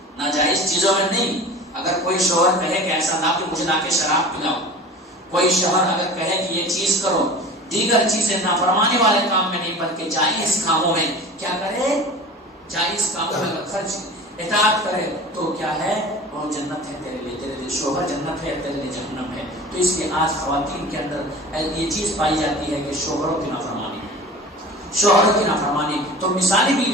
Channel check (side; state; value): both; normal; correlation 0.38